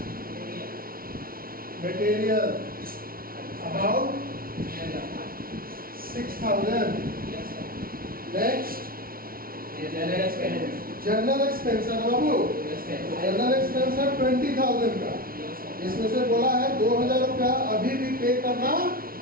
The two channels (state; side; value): late; left; 0.43 ms